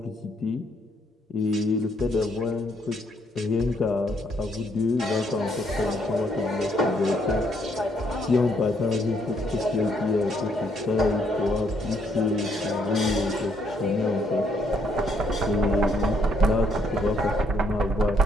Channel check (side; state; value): both; normal; correlation 0.71